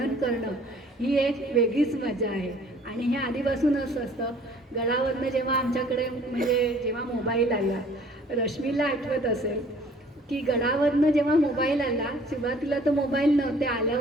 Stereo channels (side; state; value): both; normal; correlation 0.54